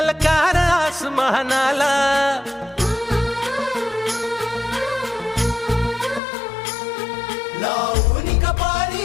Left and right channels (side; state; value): right; drops out; at 6.2 s